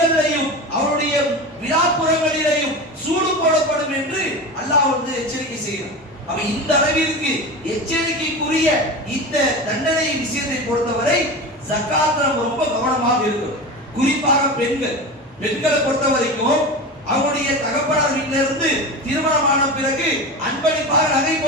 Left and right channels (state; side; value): normal; both; correlation 0.27